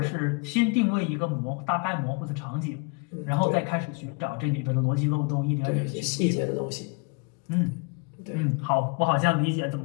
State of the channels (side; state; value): right; quieter; 31.5 dB